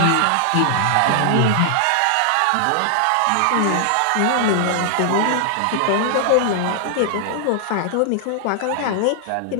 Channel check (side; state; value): both; different; correlation -0.01